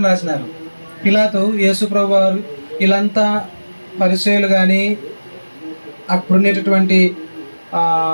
రాసినారు? పిలాతు యేసుప్రభు వారు, వీళ్ళంతా పరిసయ్యులు కానీ అప్పుడున్నటువంటి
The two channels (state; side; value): inverted; both; correlation -1.00